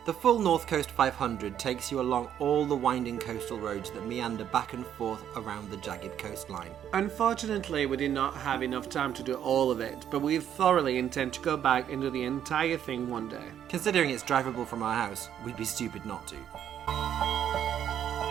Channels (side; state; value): left; quieter; 9.8 dB